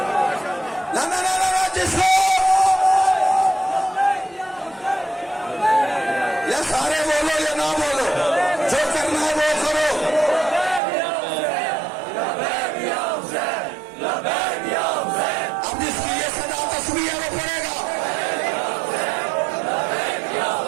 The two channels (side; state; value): left; drops out; at 10.8 s